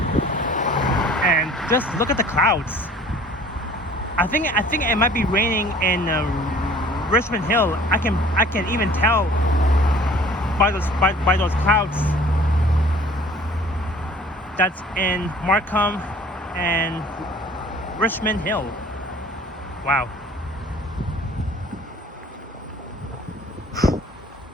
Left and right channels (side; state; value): both; normal; correlation 0.50